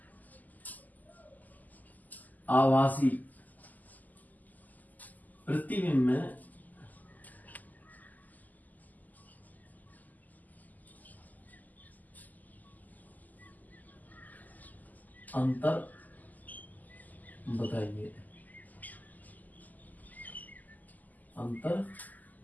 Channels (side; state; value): right; late; 0.082 ms